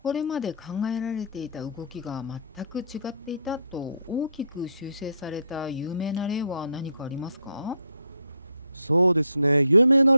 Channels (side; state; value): both; inverted; correlation -0.67